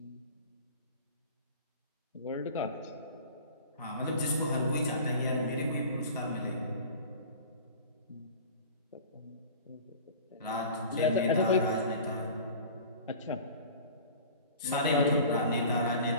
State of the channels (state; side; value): inverted; both; correlation -0.40